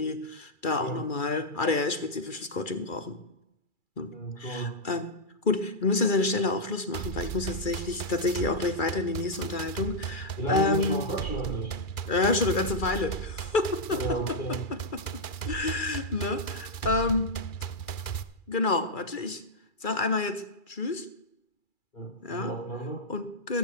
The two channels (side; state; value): right; late; 2.3 ms